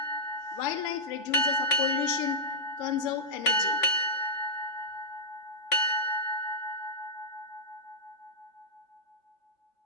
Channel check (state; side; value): late; right; 3.5 ms